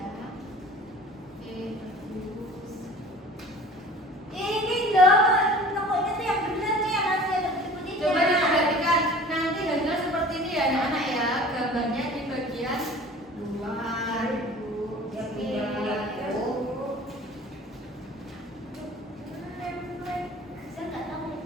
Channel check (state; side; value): normal; both; correlation 0.44